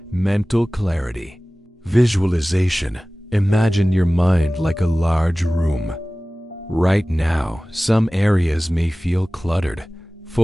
Mental clarity. Visualization. Imagine your mind like a large room. Right now, some areas may feel cluttered,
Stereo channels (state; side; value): normal; both; correlation 0.98